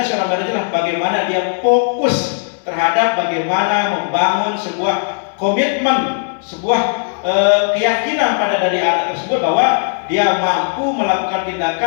seorang manajer bagaimana dia fokus terhadap bagaimana membangun sebuah komitmen, sebuah keyakinan pada dari anak tersebut bahwa dia mampu melakukan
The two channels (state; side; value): silent; right; digital silence